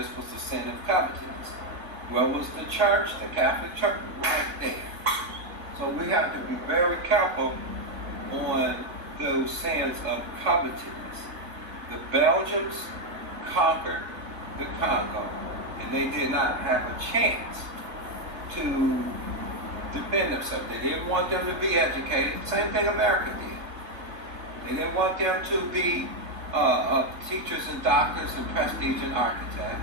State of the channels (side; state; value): left; late; 3.4 ms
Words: was the sin of covetousness. Where was the church, the Catholic Church? Right there. So we have to be very careful on those sins of covetousness. The Belgians conquered the Congo, and they did not have a chance to defend themselves. They didn't want them to be educated. Same thing America did. They didn't want them to be teachers and doctors and prestige and